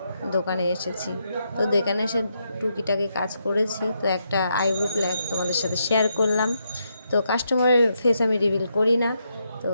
দোকানে এসেছি। তো দোকানে এসে টুকিটাকি কাজ করেছি। তো একটা আইব্রো প্ল্যাক তোমাদের সাথে শেয়ার করলাম। তো কাস্টমারের ফেস আমি রিভিল করি না। তো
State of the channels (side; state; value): both; inverted; correlation -0.80